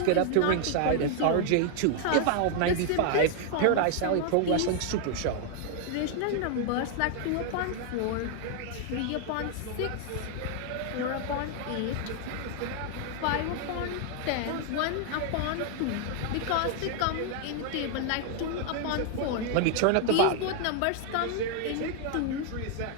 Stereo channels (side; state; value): both; different; correlation 0.00